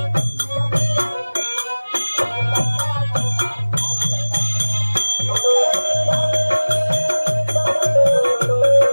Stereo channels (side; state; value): both; inverted; correlation -1.00